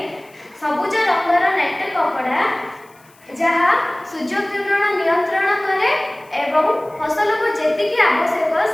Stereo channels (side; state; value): left; noise; hiss, 30 dB below the sound